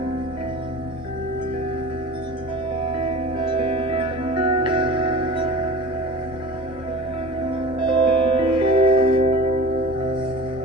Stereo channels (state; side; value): normal; both; correlation 0.37